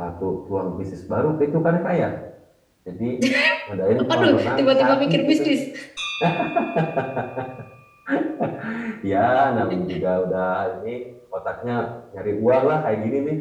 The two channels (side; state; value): both; identical; correlation 1.00